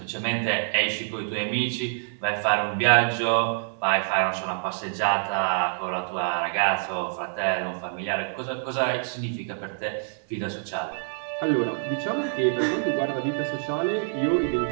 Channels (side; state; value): left; silent; digital silence